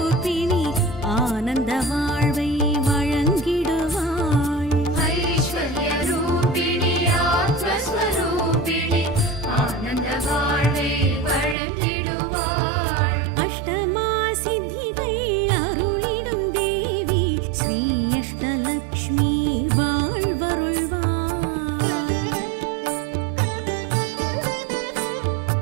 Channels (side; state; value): left; drops out; at 11.6 s